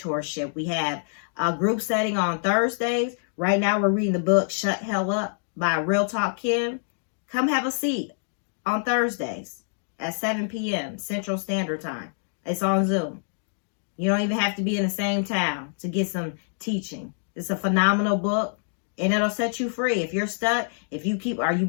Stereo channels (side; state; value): right; silent; digital silence